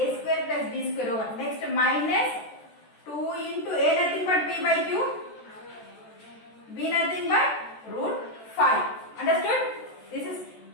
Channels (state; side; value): late; right; 14 ms